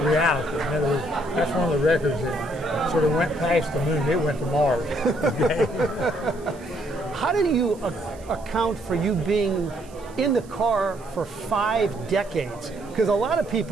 reality. In other words, that's one of the records that sort of went past the moon. It went to Mars. How did you account for you being in the car for 5 decades? Because a lot of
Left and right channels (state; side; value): noise; right; hiss, 25 dB below the sound